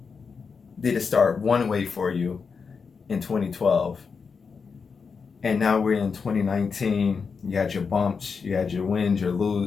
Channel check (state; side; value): quieter; right; 5.4 dB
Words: did it start one way for you in 2012? And now we're in 2019. You had your bumps, you had your wins,